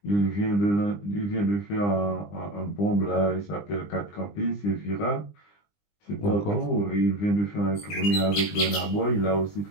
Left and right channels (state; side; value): late; right; 20 ms